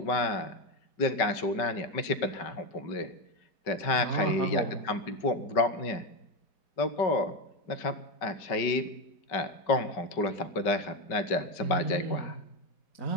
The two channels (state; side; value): late; right; 5.2 ms